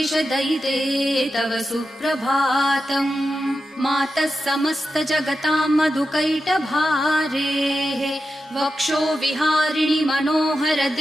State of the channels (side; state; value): both; normal; correlation 0.90